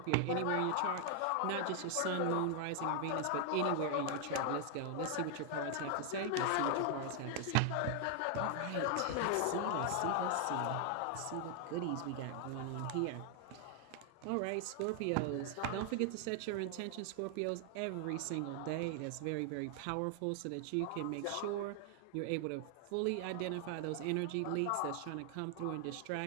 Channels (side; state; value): both; different; correlation 0.00